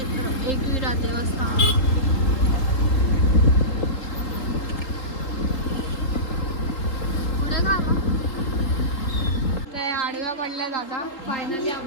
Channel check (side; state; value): right; late; 3.8 ms